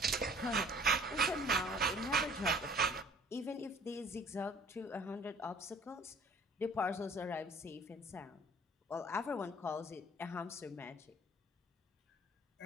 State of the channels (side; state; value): both; normal; correlation 0.51